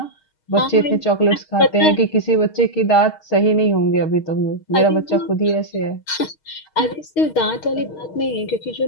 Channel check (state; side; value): late; right; 6.4 ms